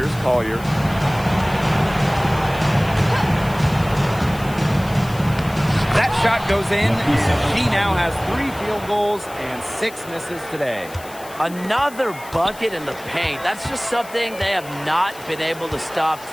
Collier. That shot goes in. She now has 3 field goals and 6 misses today. Another bucket in the paint. That's just something they have not been able to stop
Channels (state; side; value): noise; left; hiss, 19 dB below the sound